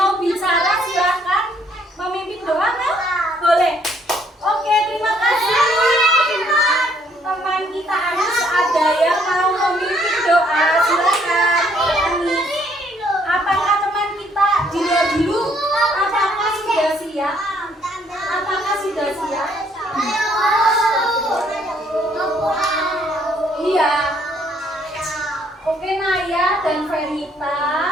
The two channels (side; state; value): both; normal; correlation 0.66